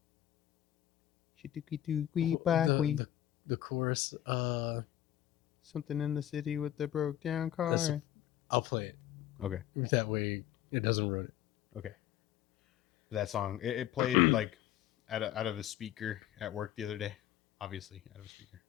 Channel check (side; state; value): right; quieter; 12.5 dB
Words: chorus? Something in the city with the broke down car. I'll play it. Okay. That way it doesn't ruin it. Okay. That song, it played like out of a speaker at work the other day. Obviously out of a speaker,